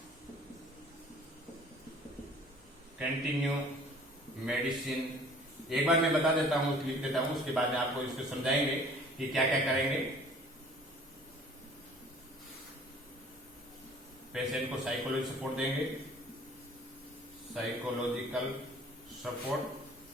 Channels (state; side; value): normal; both; correlation 0.51